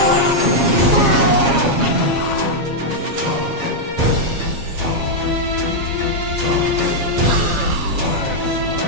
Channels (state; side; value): late; left; 7.4 ms